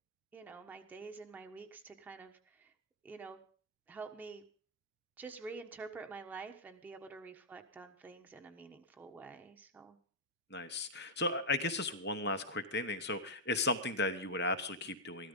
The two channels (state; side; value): normal; both; correlation -0.08